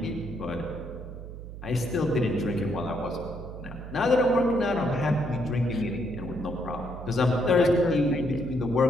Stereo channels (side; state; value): right; noise; hum, 11 dB below the sound